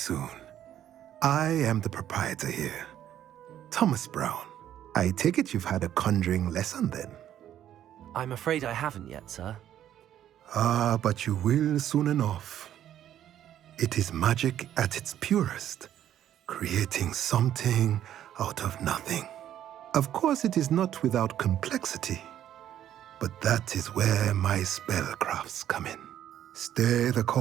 I am the proprietor here, Thomas Brown. I take it you've had a conjuring lesson then? I'm afraid I haven't yet, sir. Ah, but you will soon enough. It is magic at its purest, creating something out of nothing. Of course, it is not without complexity, but that is where my spellcrafts come in. Stay the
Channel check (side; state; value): left; quieter; 11.1 dB